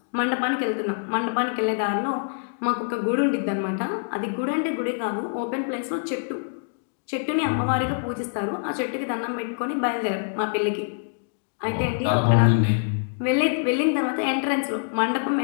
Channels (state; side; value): silent; right; digital silence